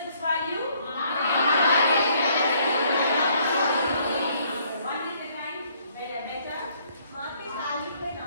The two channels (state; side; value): inverted; both; correlation -0.65